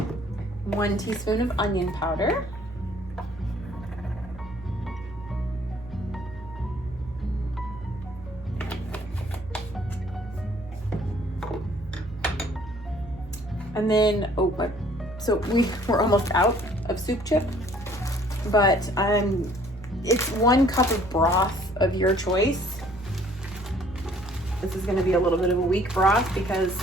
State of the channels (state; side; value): normal; both; correlation 0.58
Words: One teaspoon of onion powder. And then, so we're almost out of soup chip, but it's 1 cup of broth of your choice. This is gonna be a little bit of a weak broth because